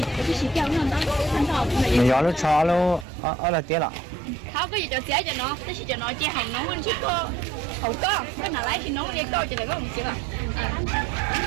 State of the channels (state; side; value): drops out; left; at 3.1 s